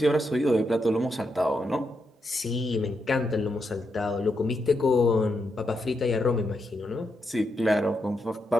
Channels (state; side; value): normal; both; correlation 0.83